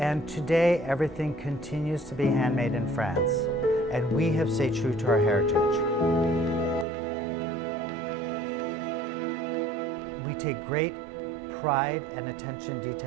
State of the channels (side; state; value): left; drops out; at 6.9 s